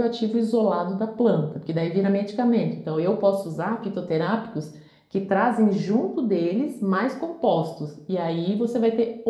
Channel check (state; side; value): identical; both; correlation 1.00